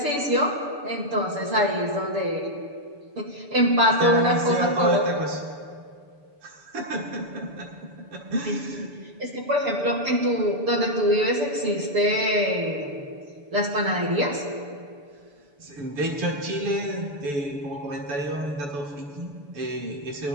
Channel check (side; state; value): left; late; 6.9 ms